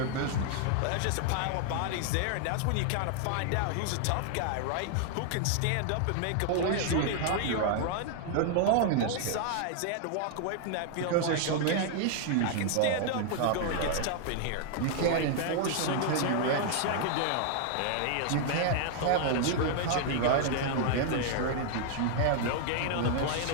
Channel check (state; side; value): different; both; correlation 0.00